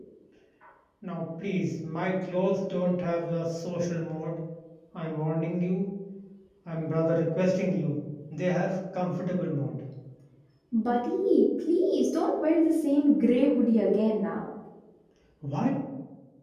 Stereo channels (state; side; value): identical; both; correlation 1.00